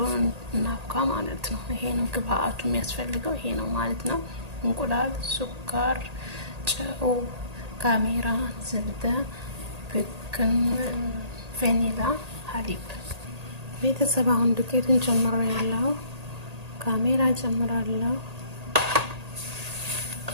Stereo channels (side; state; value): left; late; 1.8 ms